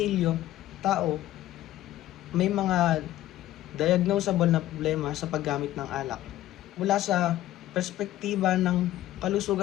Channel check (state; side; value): quieter; right; 14.3 dB